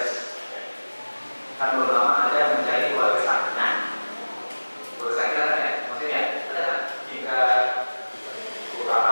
Kan belum lama ada mencari keluarga sakinah. Keluarga sakinah kan ya, maksudnya ada kan? Jika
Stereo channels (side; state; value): both; inverted; correlation -1.00